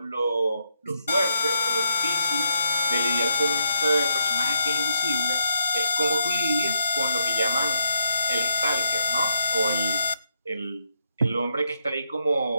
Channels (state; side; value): inverted; both; correlation -0.78